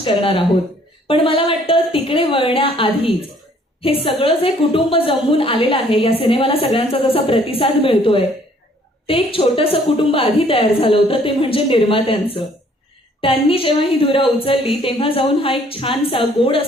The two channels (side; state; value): both; normal; correlation 0.61